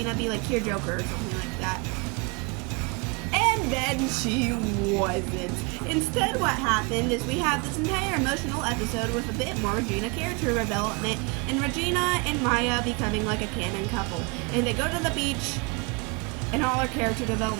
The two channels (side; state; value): left; quieter; 30.0 dB